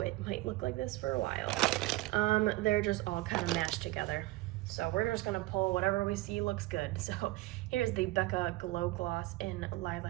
might look like this for a while. They're just all kind of mashed together. So we're just gonna pull whatever we see looks good. So here's the Becca Glow Gloss in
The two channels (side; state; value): left; quieter; 19.8 dB